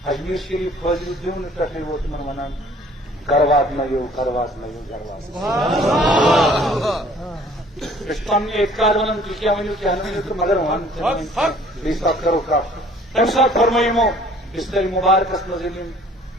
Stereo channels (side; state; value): both; normal; correlation 0.55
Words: شریف فاضل دیون پہ وہ تمہیں ونان گروات نیو گروات نیو گروات پن اعتقاد ونان تھی کیا ونو کیا ونو تو مگر ون بیس بات کرو کا تم سات فرمائیمو بستر مبارکس مزلیم